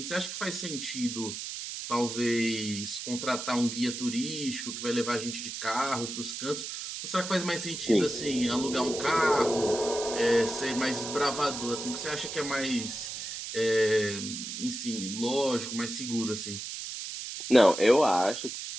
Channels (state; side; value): noise; right; hiss, 7 dB below the sound